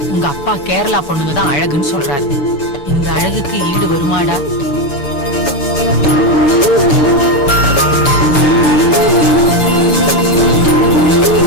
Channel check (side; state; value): right; late; 7.2 ms